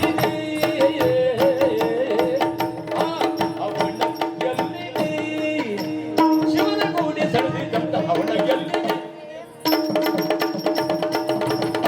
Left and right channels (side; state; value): both; identical; correlation 1.00